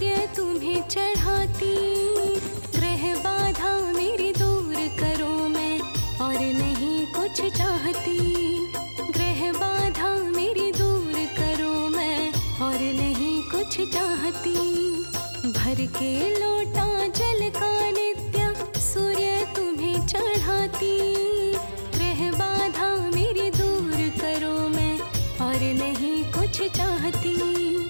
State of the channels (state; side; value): inverted; both; correlation -1.00